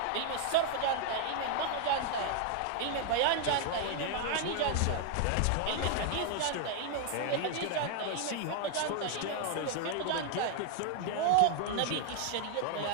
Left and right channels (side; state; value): both; different; correlation 0.00